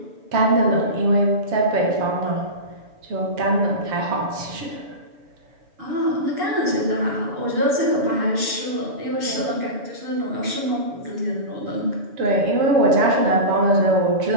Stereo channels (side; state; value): left; late; 7.0 ms